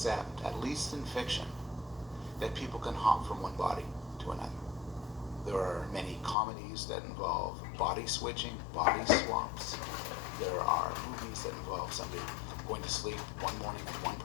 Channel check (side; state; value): right; drops out; at 6.4 s